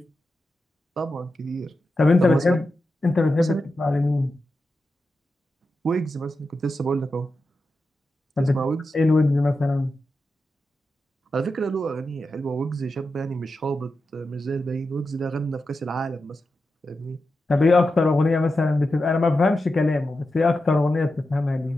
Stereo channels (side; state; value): both; normal; correlation 0.90